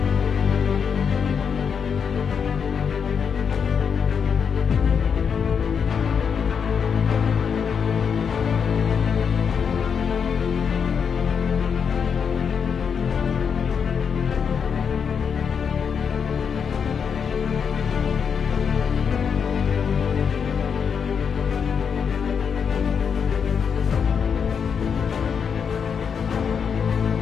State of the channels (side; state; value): right; quieter; 6.7 dB